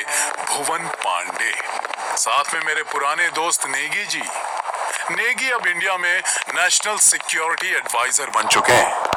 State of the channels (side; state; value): both; identical; correlation 1.00